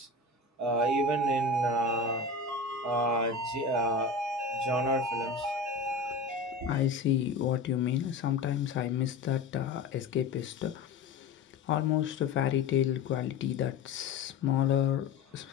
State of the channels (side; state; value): right; quieter; 3.9 dB